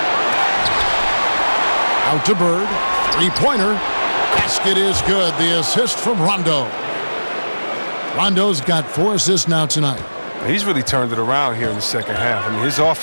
Out to Bird. Three-pointer. Basket is good. The assist from Rondo. Rondo's got 4 assists now tonight. He's really turned it around here in the second half. I mean, his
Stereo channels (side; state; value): both; inverted; correlation -1.00